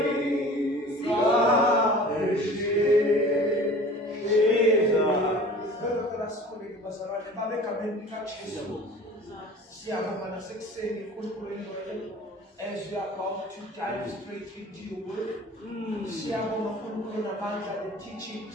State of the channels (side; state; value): both; normal; correlation 0.43